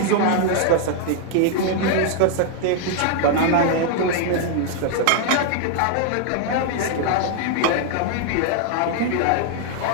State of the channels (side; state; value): both; different; correlation 0.00